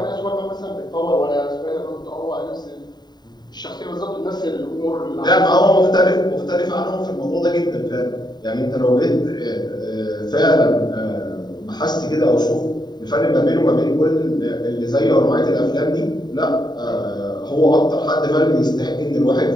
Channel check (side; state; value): right; late; 0.20 ms